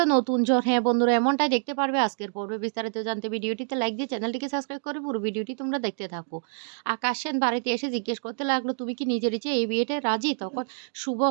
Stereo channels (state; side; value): silent; left; digital silence